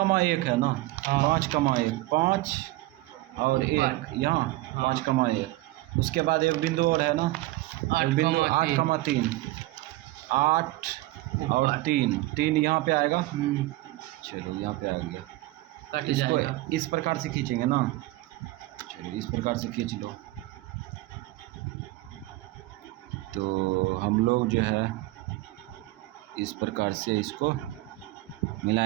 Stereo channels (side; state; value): left; quieter; 18.6 dB